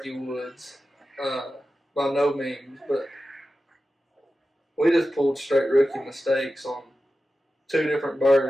Woods, by no means, but we just pulled straight rookie mistakes on 2 different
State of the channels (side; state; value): both; normal; correlation 0.93